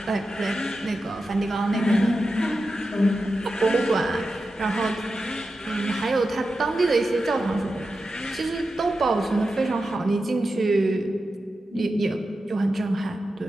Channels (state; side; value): normal; both; correlation 0.91